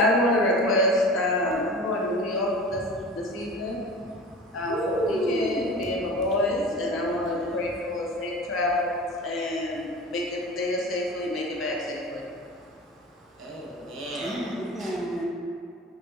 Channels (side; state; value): both; normal; correlation 0.36